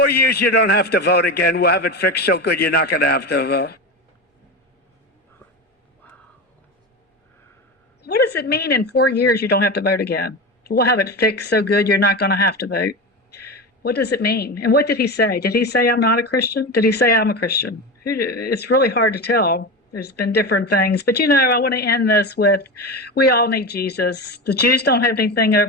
years, you don't have to vote again. We'll have it fixed so good you're not going to have to vote. What does it mean in 4 years you don't have to vote again? We'll have it fixed so good you're not going to have to vote. What does it mean? And what did he say? Did he say I'm not a Christian? Did he say I'm a Christian? It's really hard to tell. There's been different things. But, I want to end this with, we all need Jesus. The Jews don't have anything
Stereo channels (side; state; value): both; normal; correlation 0.22